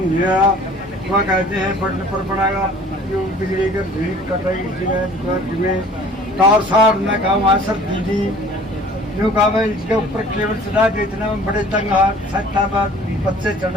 है। वह कहते हैं बढ़ने पर पड़ेगा जो बिजली के भीड़ कटाई में तार सार में कहा वहाँ सर दीदी यूँ कहा मैं इसके ऊपर केबल चढ़ा दे, इतना में बड़े तंग सकता बाद बच्चे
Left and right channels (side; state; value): both; normal; correlation 0.49